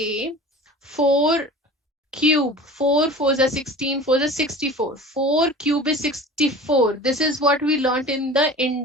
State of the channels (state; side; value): normal; both; correlation 0.38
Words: 4 cube, 4 4s are 16, 4s are 64. 4 cube is 64. This is what we learned in the